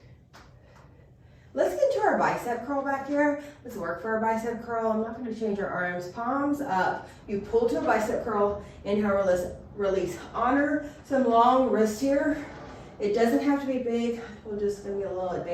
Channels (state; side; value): identical; both; correlation 1.00